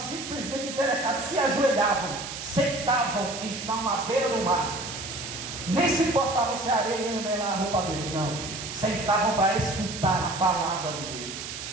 interessados, se ajoelhavam, sentavam e estavam à beira do mar. Nem se importavam se a areia ia melar a roupa deles, não. Sentavam para escutar a palavra de Deus,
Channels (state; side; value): noise; right; hiss, 8 dB below the sound